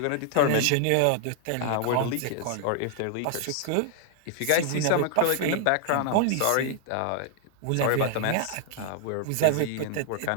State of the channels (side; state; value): both; different; correlation 0.00